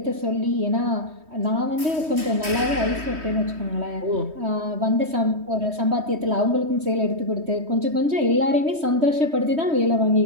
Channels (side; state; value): left; late; 3.2 ms